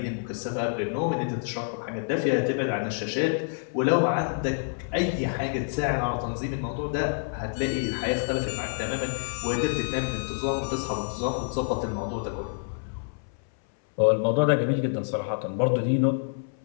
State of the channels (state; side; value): silent; right; 60 dB below the other